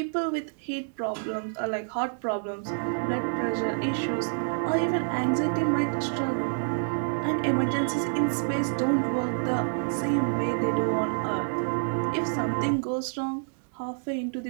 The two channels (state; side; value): silent; left; digital silence